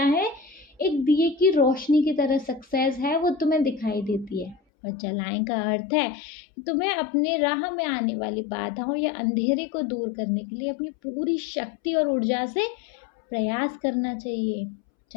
है? एक दिए की रोशनी की तरह सक्सेस है, वो तुम्हें दिखाई देती है। और जलाएं का अर्थ है कि तुम्हें अपने राह में आने वाली बाधाओं या अंधेरे को दूर करने के लिए अपनी पूरी शक्ति और ऊर्जा से प्रयास करना चाहिए,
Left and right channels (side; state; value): right; drops out; at 4.6 s